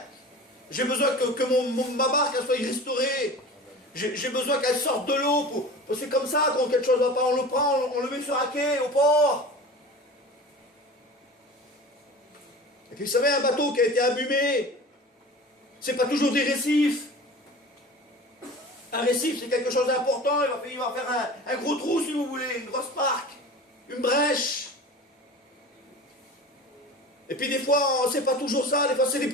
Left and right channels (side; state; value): both; normal; correlation 0.36